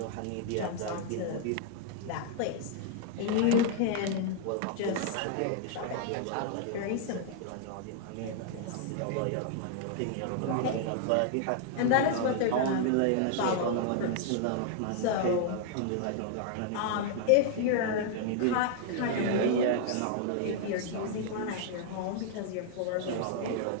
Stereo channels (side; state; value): both; different; correlation 0.00